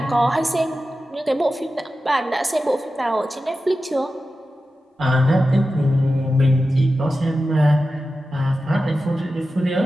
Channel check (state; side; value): normal; both; correlation 0.93